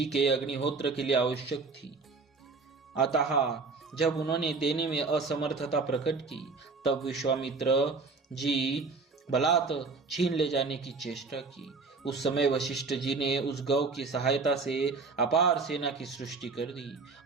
के अग्निहोत्र के लिए आवश्यक थी। अतः जब उन्होंने देने में असमर्थता प्रकट की, तब विश्वामित्र जी बलात् छीन ले जाने की चेष्टा की। उस समय वशिष्ठ जी ने उस गौ की सहायता से अपार सेना की सृष्टि कर दी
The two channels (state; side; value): quieter; left; 4.2 dB